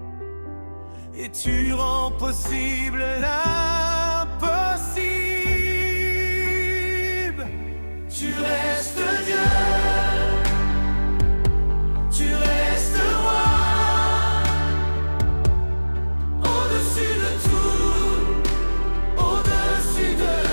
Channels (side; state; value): both; inverted; correlation -1.00